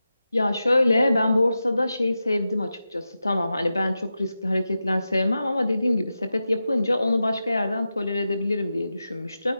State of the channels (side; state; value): both; inverted; correlation -0.92